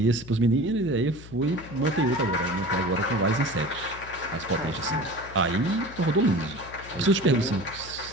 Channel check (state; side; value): noise; left; hum, 17 dB below the sound